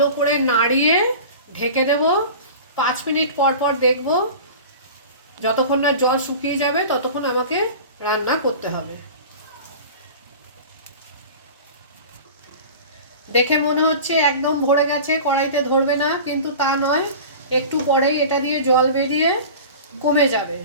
করে নাড়িয়ে ঢেকে দেব। 5 মিনিট পর পর দেখব, যতক্ষণ না জল শুকিয়ে যাবে ততক্ষণ আমাকে রান্না করতে হবে। দেখে মনে হচ্ছে একদম ভরে গেছে, কড়াইতে ধরবে না, কিন্তু তা নয়। একটু পরেই এটা দিয়ে জল বেরিয়ে কমে যাবে।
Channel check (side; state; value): both; inverted; correlation -0.36